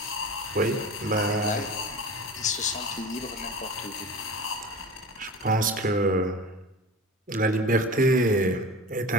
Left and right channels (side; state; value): both; normal; correlation 0.34